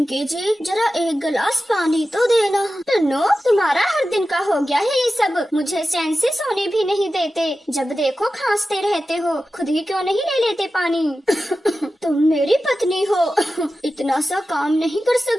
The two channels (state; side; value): normal; both; correlation 0.93